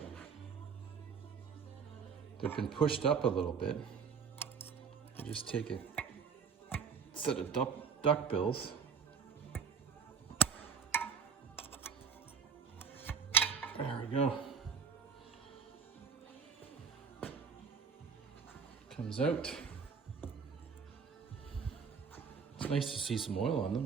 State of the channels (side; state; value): left; quieter; 6.1 dB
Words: been pushed up a little bit, I just take a set of duck bills. There we go. Comes out. It's nice to see some oil on